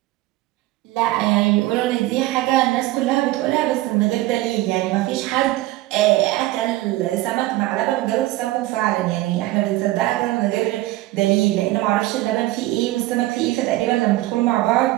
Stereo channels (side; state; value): left; quieter; 17.4 dB